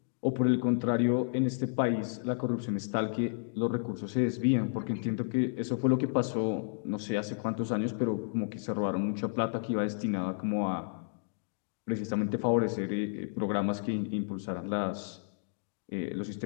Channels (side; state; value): right; silent; digital silence